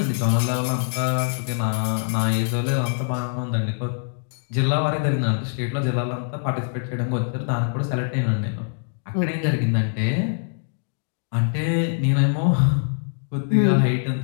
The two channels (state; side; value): silent; right; digital silence